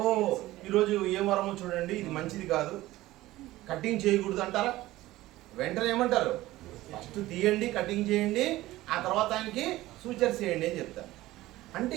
ఈరోజు ఏ వారమో చూడండి, ఇది మంచిది కాదు, కటింగ్ చేయకూడదు అంటారా? వెంటనే ఏమంటారు, ఫస్ట్ తీయండి, కటింగ్ చేయండి, ఆ తర్వాత ఆయనకి సూచర్ చేయండి అని చెప్తారు.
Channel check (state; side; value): quieter; left; 16.9 dB